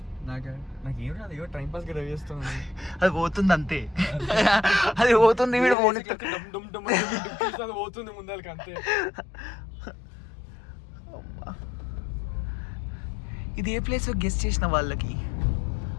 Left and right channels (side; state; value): right; drops out; at 5.8 s